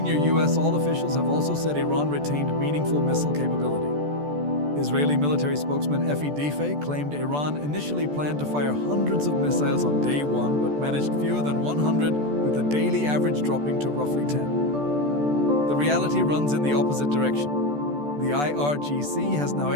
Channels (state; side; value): late; left; 14 ms